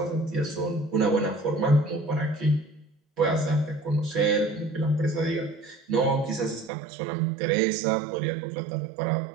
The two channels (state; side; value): drops out; left; at 6.7 s